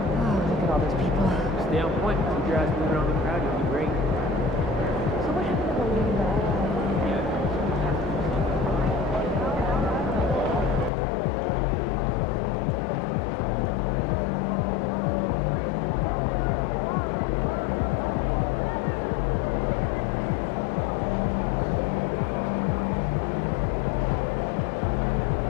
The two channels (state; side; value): drops out; right; at 10.9 s